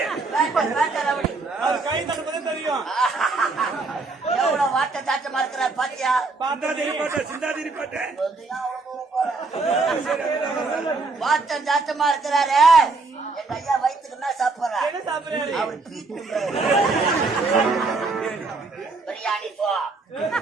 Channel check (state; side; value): quieter; left; 3.8 dB